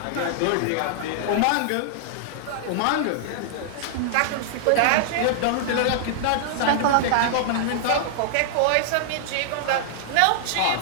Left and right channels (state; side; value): different; both; correlation -0.01